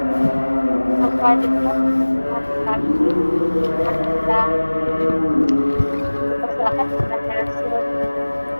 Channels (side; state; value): both; inverted; correlation -1.00